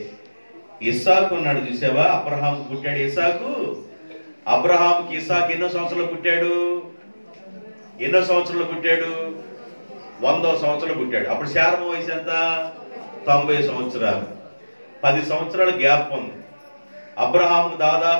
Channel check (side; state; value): both; inverted; correlation -1.00